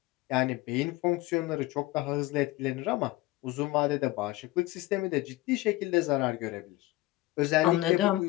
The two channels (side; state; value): right; quieter; 18.5 dB